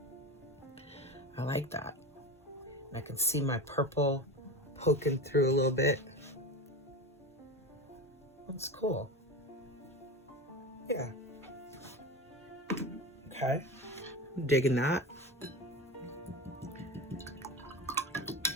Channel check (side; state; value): both; normal; correlation 0.26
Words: I like that. I can see my purple poking through a little bit. That's cool. Yeah. Okay. I'm digging that.